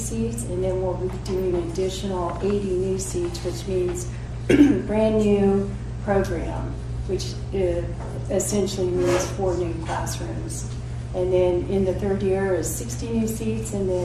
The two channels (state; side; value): identical; both; correlation 1.00